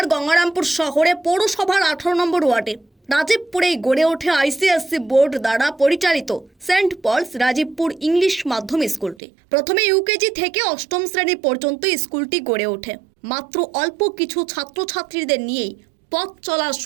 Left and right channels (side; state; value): left; drops out; at 9.2 s